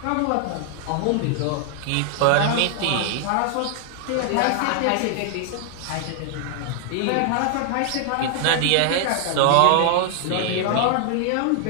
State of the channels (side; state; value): both; different; correlation 0.00